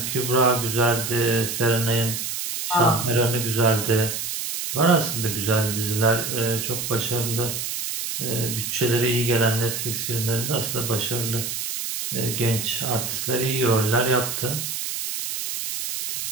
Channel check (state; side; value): noise; right; hiss, 4 dB below the sound